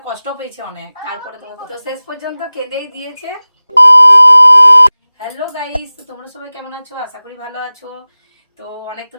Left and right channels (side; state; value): both; inverted; correlation -0.98